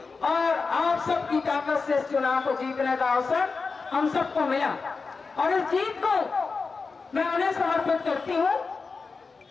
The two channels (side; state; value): right; quieter; 4.5 dB